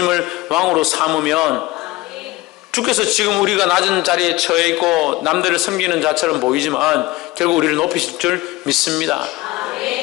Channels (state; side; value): quieter; right; 19.8 dB